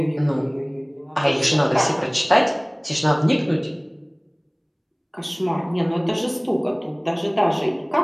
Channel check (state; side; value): identical; both; correlation 1.00